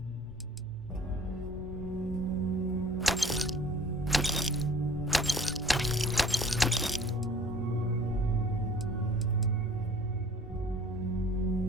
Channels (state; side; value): normal; both; correlation 0.51